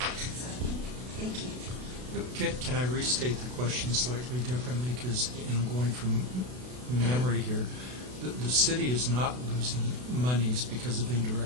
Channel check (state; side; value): late; left; 32 ms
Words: so, thank you. Can I restate the question slightly differently? Because, going from memory here, the city is not losing monies because of